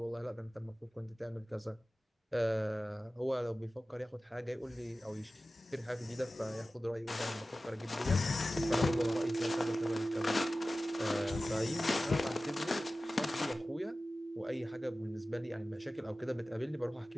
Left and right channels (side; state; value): both; normal; correlation 0.96